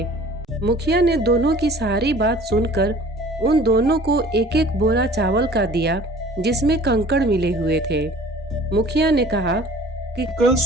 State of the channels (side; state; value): both; normal; correlation 0.48